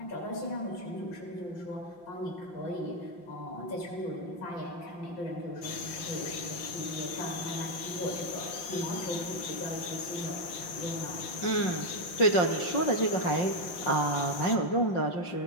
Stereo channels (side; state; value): right; late; 5.7 ms